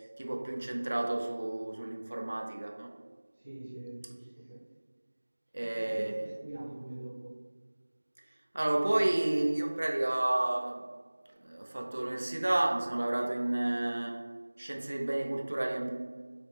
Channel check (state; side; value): inverted; both; correlation -1.00